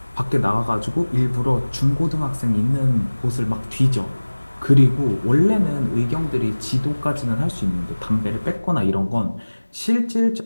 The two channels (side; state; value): both; inverted; correlation -1.00